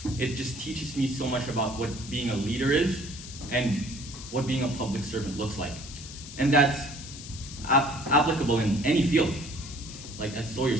it just teaches me so much about what being a leader is and what being a public servant looks like. And that's applicable in any field. Like as Sawyer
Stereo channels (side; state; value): left; noise; hiss, 13 dB below the sound